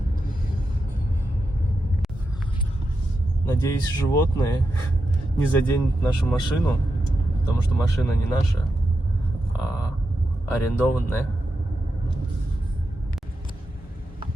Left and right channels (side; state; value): both; normal; correlation 0.88